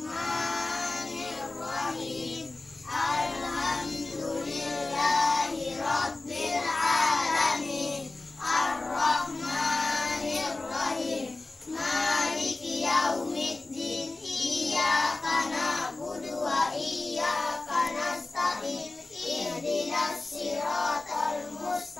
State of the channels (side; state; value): right; quieter; 3.2 dB